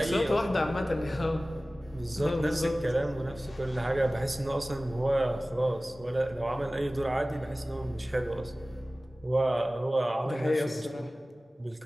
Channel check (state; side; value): normal; both; correlation 0.97